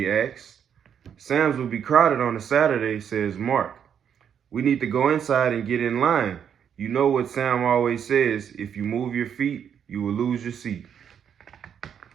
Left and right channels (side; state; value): left; quieter; 8.2 dB